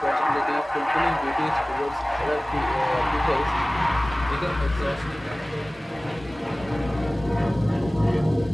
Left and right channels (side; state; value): both; normal; correlation 0.98